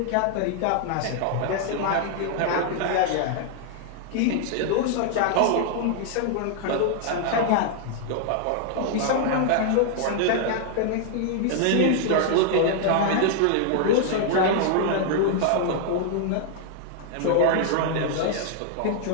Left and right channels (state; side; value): different; both; correlation -0.01